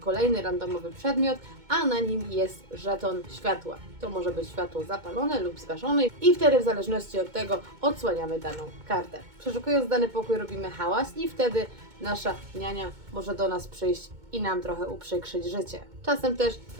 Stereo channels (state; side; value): late; left; 2.2 ms